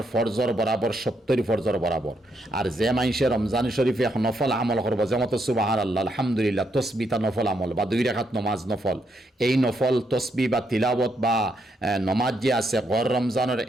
ফরজর বরাবর 70 ফরজর বরাবর, আর যে মাইসে রমজান শরীফে এক নফল আমল করব যেমন সুবহানাল্লাহ আলহামদুলিল্লাহ তসবিতা নফল আমল বা 2 রাকাত নমাজ নফল, এই নফল তসবি বা তিলাওয়াত বা নমাজ যে আছে গয়ের রমজানের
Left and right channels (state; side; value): normal; both; correlation 0.77